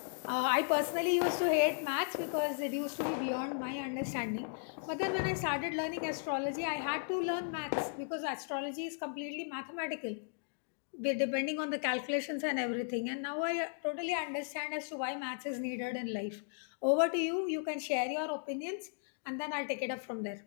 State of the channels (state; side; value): silent; right; digital silence